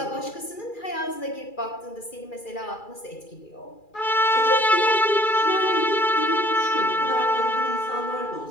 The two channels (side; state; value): right; late; 2.4 ms